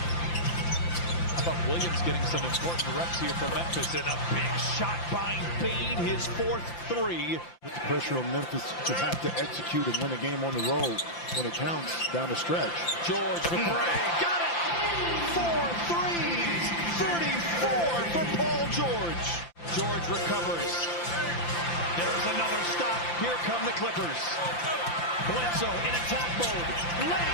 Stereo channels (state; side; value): late; right; 5.9 ms